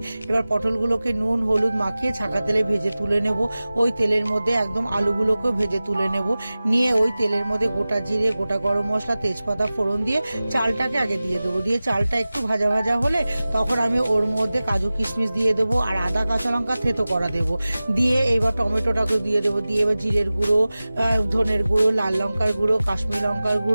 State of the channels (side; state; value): both; inverted; correlation -0.97